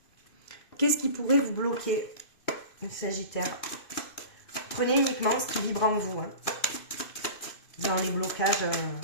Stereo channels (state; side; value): late; right; 2.5 ms